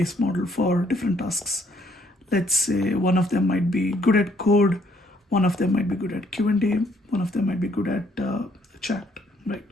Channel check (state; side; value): normal; both; correlation 0.67